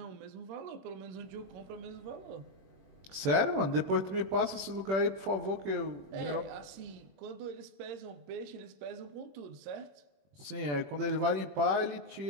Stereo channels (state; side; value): late; left; 21 ms